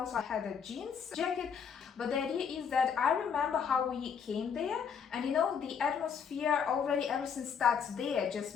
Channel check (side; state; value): right; quieter; 7.0 dB